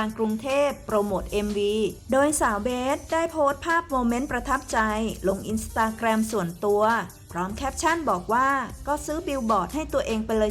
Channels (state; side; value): identical; both; correlation 1.00